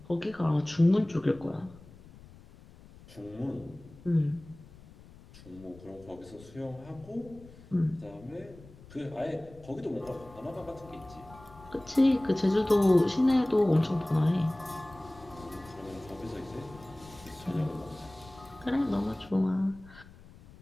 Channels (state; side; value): noise; left; rumble, 21 dB below the sound